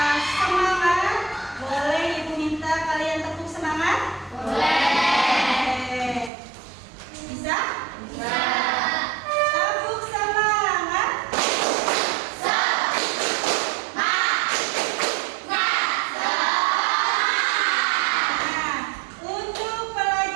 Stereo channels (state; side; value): drops out; left; at 6.3 s